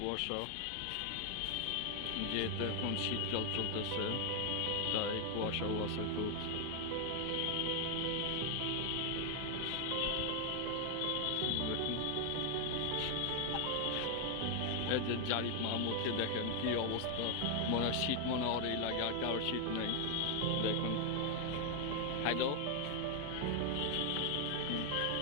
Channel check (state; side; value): different; both; correlation 0.00